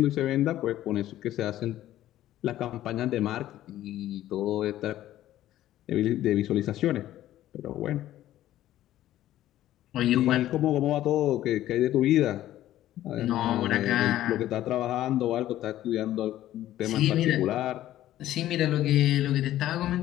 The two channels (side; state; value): right; quieter; 13.5 dB